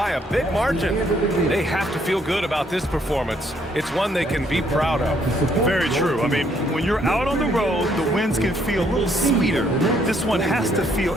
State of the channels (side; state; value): both; normal; correlation 0.69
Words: a big margin. They have to feel good about this performance. It's one they can be proud of. Very true. I mean, when you're out on the road, the wins can feel a little sweeter. This one has to feel